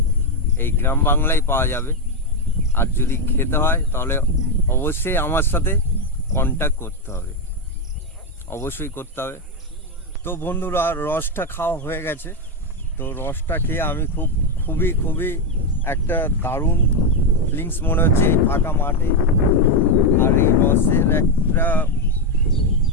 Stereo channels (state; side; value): normal; both; correlation 0.05